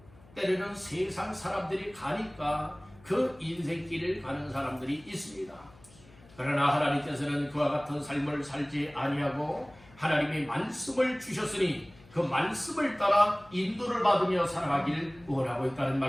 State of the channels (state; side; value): noise; left; hum, 25 dB below the sound